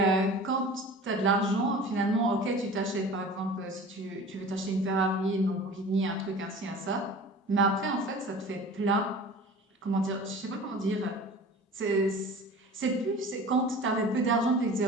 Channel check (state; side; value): normal; both; correlation 0.40